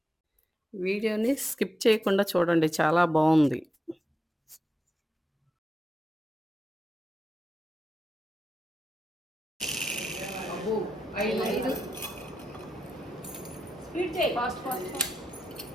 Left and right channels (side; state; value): both; normal; correlation 0.88